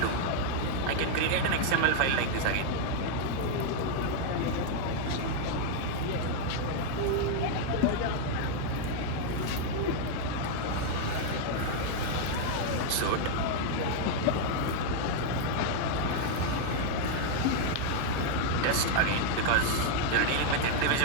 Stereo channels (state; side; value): different; both; correlation 0.00